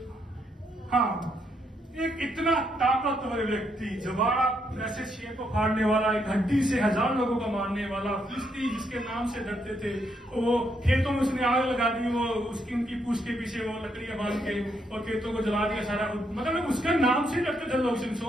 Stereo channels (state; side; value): normal; both; correlation 0.76